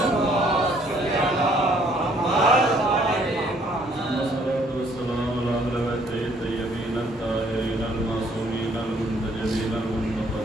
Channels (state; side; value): normal; both; correlation 0.63